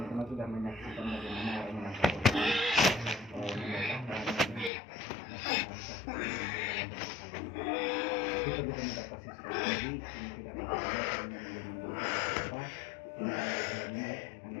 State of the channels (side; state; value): right; drops out; at 4.7 s